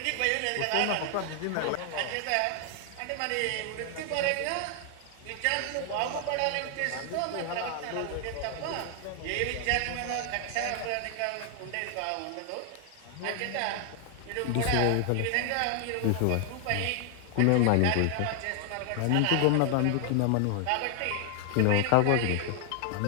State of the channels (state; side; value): different; both; correlation 0.00